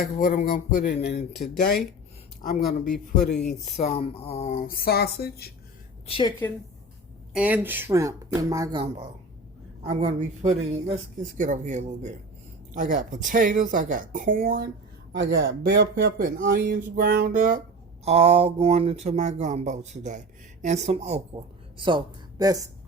what I'm going to put in. And today I'm going to be putting some sausage, chicken, and shrimp in my gumbo. I'm going to be putting, let's get over here a little bit. I got potatoes, I got corn, I got bell pepper and onions ground up, all going into my gumbo today, and some okra. So that's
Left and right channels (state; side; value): normal; both; correlation 0.33